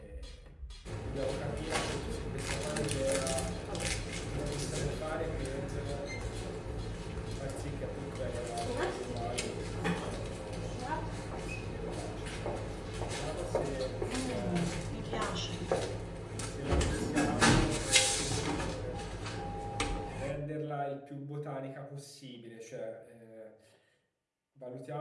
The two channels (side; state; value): both; identical; correlation 1.00